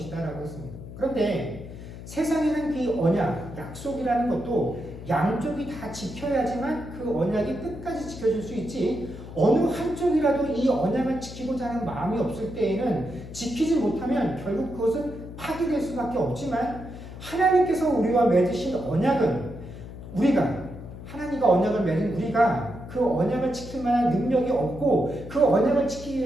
했습니다. 그런데 세상에는 그 언약, 약속이라는 것도 양쪽이 다 지켜야지만 그 언약이 끝까지 지켜질 수 있지 어느 한쪽이라도 이 언약을 지키고자 하는 마음이 없을 때에는 지키지 못하면 결국 그것은 파기될 수밖에 없지만 하나님께서 우리와 맺으신 언약은 우리가 하나님과 언약을 맺은 우리가 그 언약을 지킬 만한 능력이 없고 그 언약을 지키기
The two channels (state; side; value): noise; left; hum, 13 dB below the sound